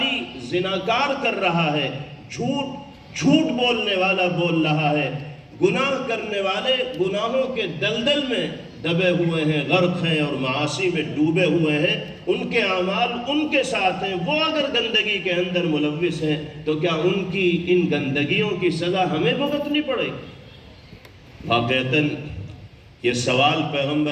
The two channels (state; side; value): identical; both; correlation 1.00